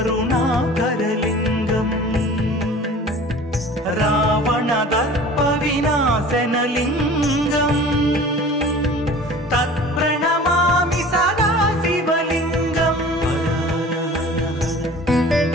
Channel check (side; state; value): both; normal; correlation 0.43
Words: रावणदर्पविनाशनलिङ्गम् तत्प्रणमामि सदा शिवलिङ्गम्